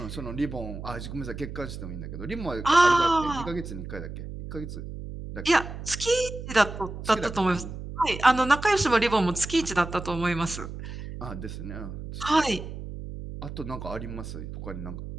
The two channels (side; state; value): right; noise; hum, 9 dB below the sound